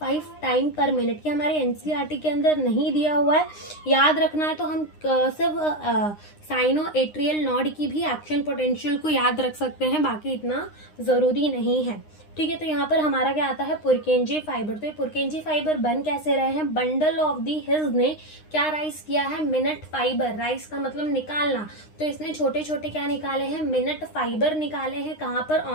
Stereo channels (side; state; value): right; late; 9.7 ms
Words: टाइम पर मिनट। ये हमारे एनसीईआरटी के अंदर नहीं दिया हुआ है, याद रखना है तो हम सिर्फ साइनो एट्रियल नॉड की भी एक्शन पोटेंशियल को याद रख सकते हैं, बाकी इतना जरूरी नहीं है। ठीक है, तो यहाँ पर हमारा क्या आता है, पुरकेंजे फाइबर। तो ये पुरकेंजे फाइबर बन कैसे रहे हैं, बंडल ऑफ दी हिल्स ने क्या राइज किया है, मिनट फाइबर। राइज का मतलब निकालना, तो इसने छोटे छोटे क्या निकाले हैं, मिनट फाइबर निकाले हैं। कहाँ पर,